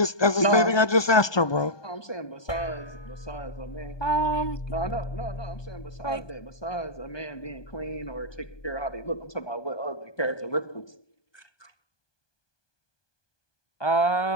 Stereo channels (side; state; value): right; late; 1.2 ms